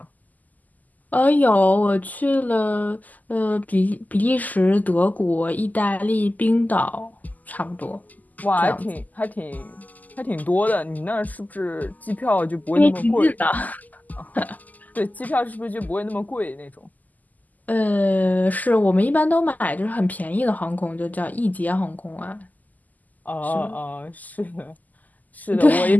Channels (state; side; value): late; right; 0.081 ms